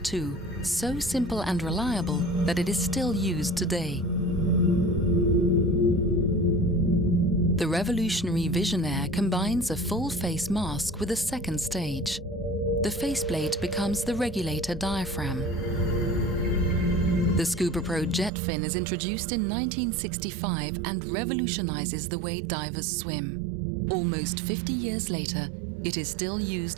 II, so simple and reliable that it is still used today. The revolutionary VISIONAIRE combines a full-face mask with a second stage. The faceplate becomes the regulator diaphragm. The ScubaPro jet fin is introduced in 1965 and revolutionizes the way divers swim. Almost 50 years later, it is still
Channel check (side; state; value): left; drops out; at 18.3 s